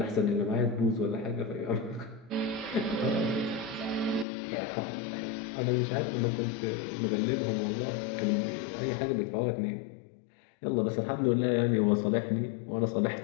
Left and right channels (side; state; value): right; drops out; at 4.2 s